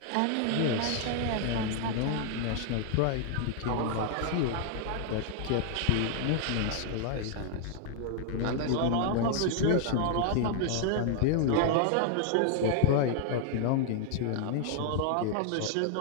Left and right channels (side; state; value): both; different; correlation 0.00